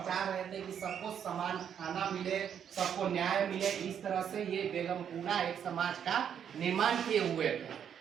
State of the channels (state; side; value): quieter; left; 8.5 dB